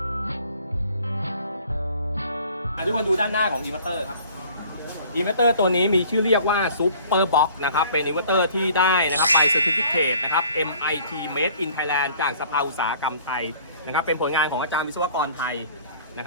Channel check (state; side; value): inverted; both; correlation -0.52